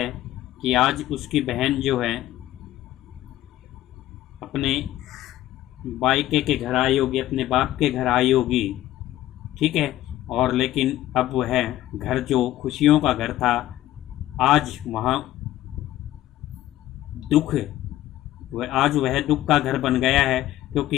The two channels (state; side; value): quieter; right; 14.4 dB